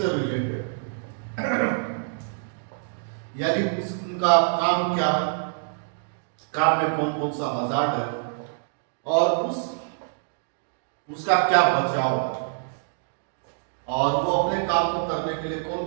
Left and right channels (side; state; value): left; silent; digital silence